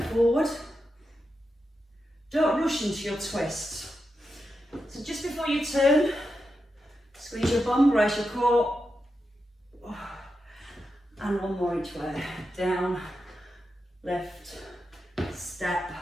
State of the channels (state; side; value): normal; both; correlation 0.88